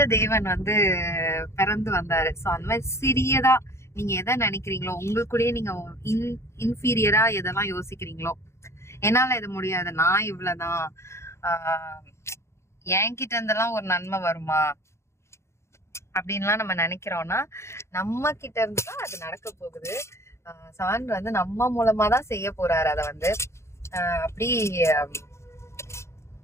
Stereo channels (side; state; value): right; late; 0.13 ms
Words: தேவன் வந்து பிறந்து வந்தாரு. ஸோ அந்த மாதிரி சிறியதா நீங்க எதை நினைக்கிறீங்களோ, உங்களுக்குள்ளேயே நீங்க இன்ஃபீரியரா எதெல்லாம் யோசிக்கிறீங்களோ, என்னால இது முடியாது, நான் இவ்வளவுதான், என்கிட்ட இருந்தெல்லாம் ஒரு நன்மை வருமா அப்படின்லாம் நம்ம நினைக்கிறோம்னா நம்ம கிட்ட இருந்துதான் அது நடக்க போகுது. சான்று வந்து நம்ம மூலமா தான் செய்ய போறாரு. அதை வந்து அப்படி